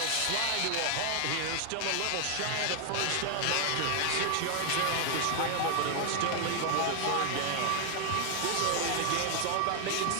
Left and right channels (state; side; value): different; both; correlation 0.00